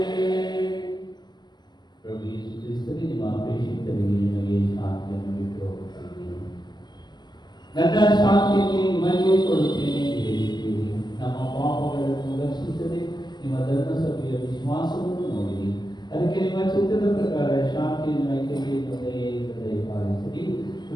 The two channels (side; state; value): right; late; 0.21 ms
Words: ಪ್ರಭು ಯೇಸು ಕ್ರಿಸ್ತನೇ ನಿಮ್ಮ ಪ್ರೇಷಿತರಿಗೆ ನಿಮಗೆ ಶಾಂತಿಯನ್ನು ಬಿಟ್ಟು ಹೋಗುತ್ತೇನೆ. ನನ್ನ ಶಾಂತಿಯನ್ನು ನಿಮಗೆ ಕೊಡುತ್ತೇನೆ ಎಂದು ಹೇಳಿದ್ದೀರಿ. ನಮ್ಮ ಪಾಪಗಳನ್ನು ರಕ್ಷಿಸದೆ ನಿಮ್ಮ ಧರ್ಮಸಭೆಯ ವಿಶ್ವಾಸವನ್ನು ನೋಡಿರಿ. ಅದಕ್ಕೆ ನಿಮ್ಮ ಚಿತ್ತದ ಪ್ರಕಾರ ಶಾಂತಿಯನ್ನು ಐಕ್ಯತೆಯನ್ನು ದಯಪಾಲಿಸಿರಿ.